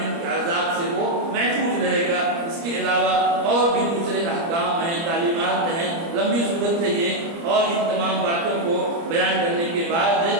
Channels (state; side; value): late; left; 30 ms